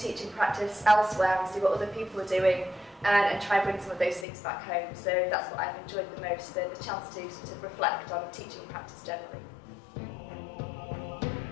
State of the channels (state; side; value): drops out; right; at 4.2 s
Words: practice elsewhere and see what other people are doing, and try and bring some of those things back home. So that's what I've enjoyed the most, the chance to sort of reflect on teaching practice generally.